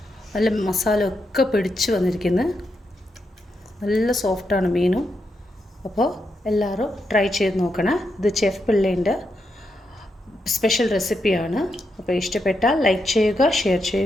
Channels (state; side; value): normal; both; correlation 0.83